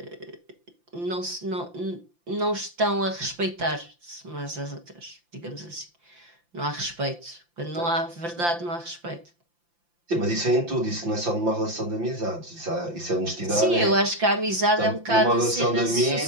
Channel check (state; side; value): late; left; 5.8 ms